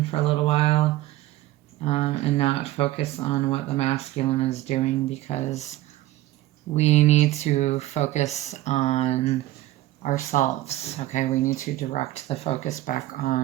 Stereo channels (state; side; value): quieter; left; 15.8 dB